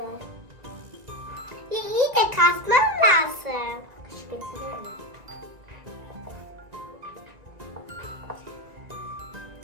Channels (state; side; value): late; left; 2.0 ms